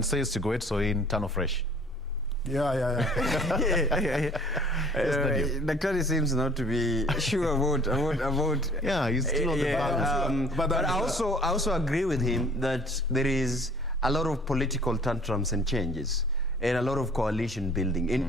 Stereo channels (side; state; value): both; normal; correlation 0.52